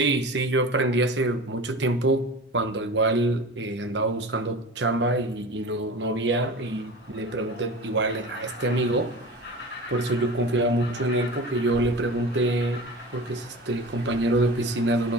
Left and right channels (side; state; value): both; normal; correlation 0.34